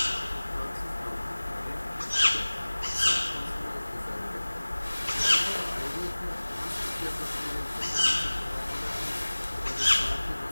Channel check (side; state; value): both; inverted; correlation -1.00